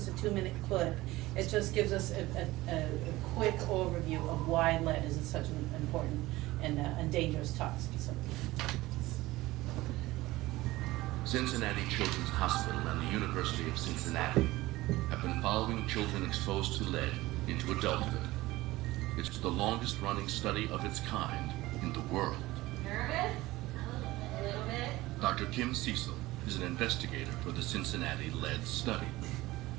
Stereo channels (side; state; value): left; quieter; 18.6 dB